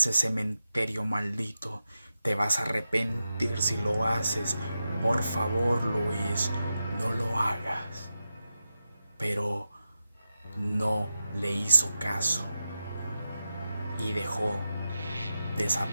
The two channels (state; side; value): inverted; both; correlation -0.90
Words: cementerio maldito, te vas a arrepentir si lo haces, por favor Luis, no lo hagas. Pero no le hizo caso y dejó